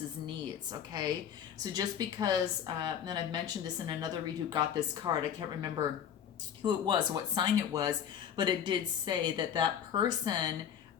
needs, okay? So just because, and I've mentioned this in another read who got this card, I can't remember who it was, what sign it was, but it did say that that person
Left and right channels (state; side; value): quieter; right; 8.8 dB